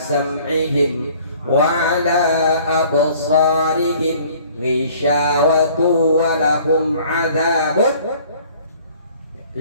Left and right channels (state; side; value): inverted; both; correlation -0.54